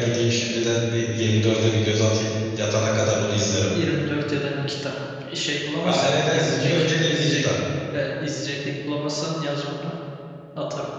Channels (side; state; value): both; identical; correlation 1.00